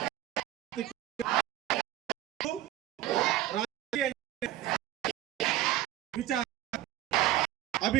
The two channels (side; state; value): left; quieter; 14.3 dB